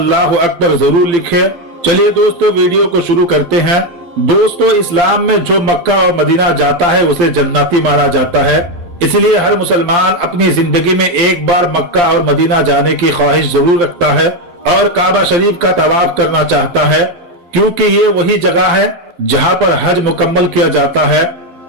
अकबर जरूर लिखे। चलिए दोस्तों, वीडियो को शुरू करते हैं। दोस्तों, इस्लाम में जो मक्का और मदीना जाता है उसे जन्नती माना जाता है। इसलिए हर मुसलमान अपनी जिंदगी में एक बार मक्का और मदीना जाने की ख्वाहिश जरूर रखता है और काबा शरीफ का तवाफ करना चाहता है, क्योंकि ये वही जगह है जहाँ पर हज मुकम्मल किया जाता है।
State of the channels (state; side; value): late; left; 12 ms